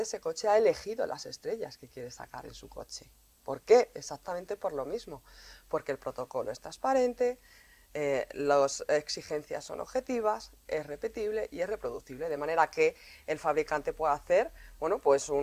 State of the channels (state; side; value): identical; both; correlation 1.00